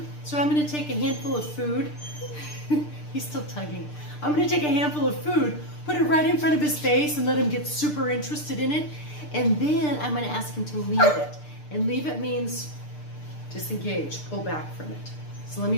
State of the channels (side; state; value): right; late; 6.7 ms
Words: So I'm going to take a handful of food. He's still tugging. I'm going to take a handful of food, put it right in front of his face and let him get super interested in it. And then I'm going to ask him to leave it. And leave it means disengage, pull back from it. So let